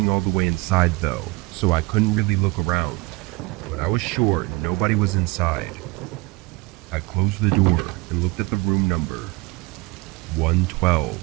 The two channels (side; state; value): left; quieter; 23.9 dB